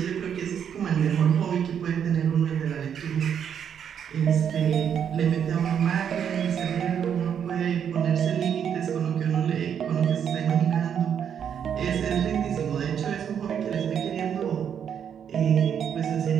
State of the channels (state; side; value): quieter; left; 8.3 dB